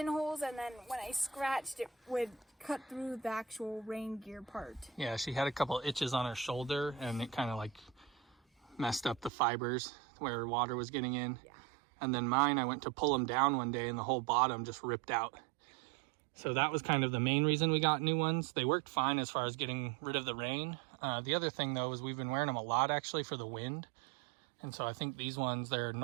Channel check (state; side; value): drops out; left; at 9.3 s